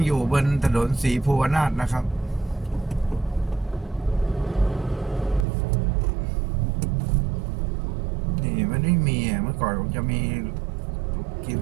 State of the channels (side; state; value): left; drops out; at 5.5 s